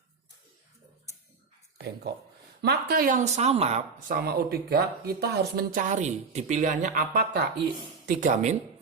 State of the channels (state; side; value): quieter; left; 4.9 dB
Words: Bengkok. Maka yang sama O3 kita harus mencari di pilihannya apakah I3-,